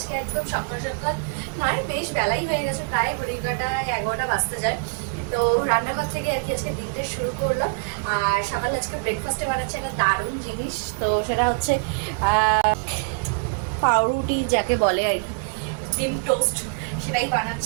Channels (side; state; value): left; quieter; 37.1 dB